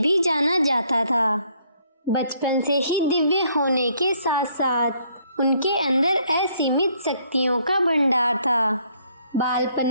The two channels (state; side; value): inverted; both; correlation -0.67